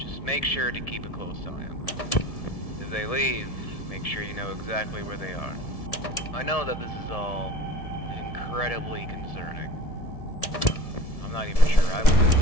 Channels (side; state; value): right; late; 1.7 ms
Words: make sure to keep a close eye on them. If they leave, make sure you know exactly where they are. I know that this is all incredibly concerning. I'm not even sure I would do this